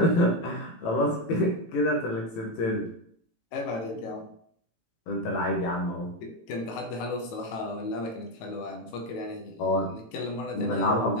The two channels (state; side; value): late; right; 18 ms